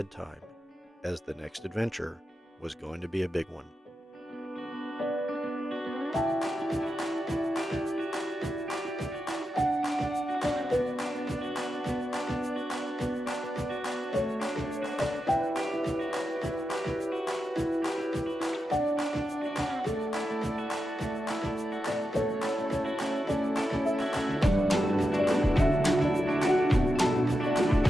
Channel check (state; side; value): normal; both; correlation 0.89